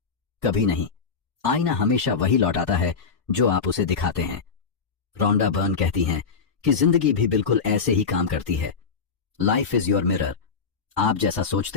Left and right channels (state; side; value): quieter; right; 5.5 dB